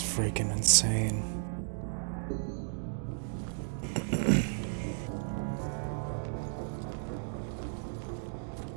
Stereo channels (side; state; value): left; silent; digital silence